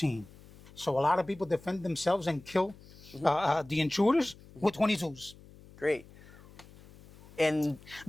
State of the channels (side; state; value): left; noise; hum, 22 dB below the sound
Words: So a lot of people defend themselves and kill the intruders with 22s. Great. And